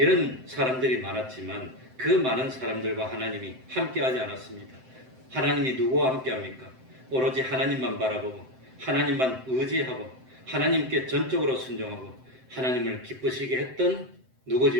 사람들이 많았지만 그 많은 사람들과 하나님이 함께하지 않았습니다. 하나님이 누구와 함께합니까? 오로지 하나님만 바라보고 하나님만 의지하고 하나님께 전적으로 순종하고 하나님을 기쁘시게 했던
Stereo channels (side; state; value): left; late; 7.8 ms